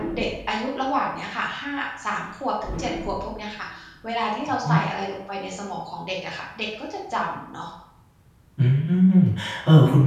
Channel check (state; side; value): identical; both; correlation 1.00